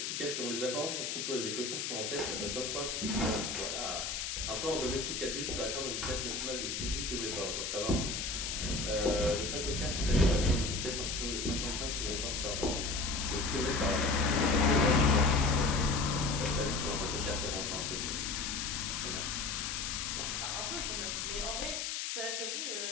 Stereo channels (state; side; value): noise; left; hiss, 3 dB below the sound